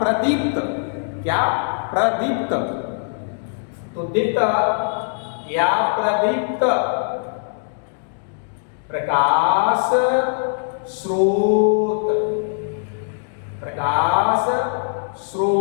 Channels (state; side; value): silent; right; digital silence